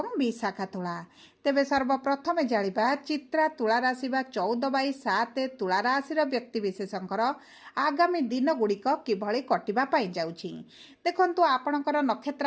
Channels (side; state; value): both; identical; correlation 1.00